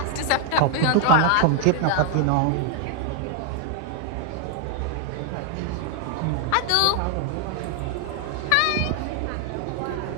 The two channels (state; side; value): different; both; correlation 0.00